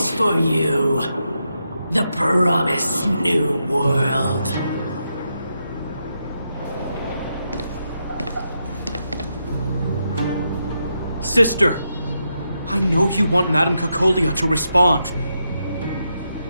for you. The promised new world. Sister, I know you want Madame Cacolia to respond.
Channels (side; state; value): both; inverted; correlation -0.84